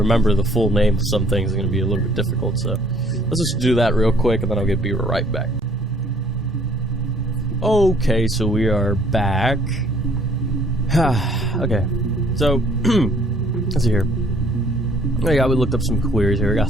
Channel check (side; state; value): both; normal; correlation 0.60